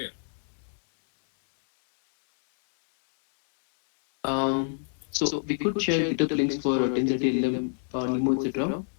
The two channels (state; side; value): silent; right; digital silence